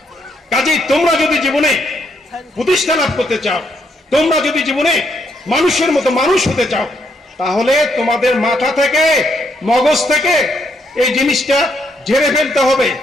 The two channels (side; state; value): both; normal; correlation 0.74